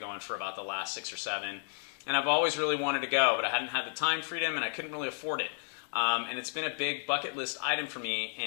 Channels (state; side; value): silent; right; 56 dB below the other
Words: going for about the last 6 or 7. And I've always really wanted to go, but I hadn't had the time freedom and I couldn't really afford it. And it's been a big bucket list item for me,